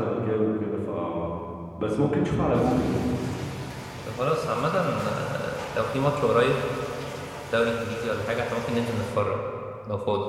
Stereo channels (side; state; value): both; identical; correlation 1.00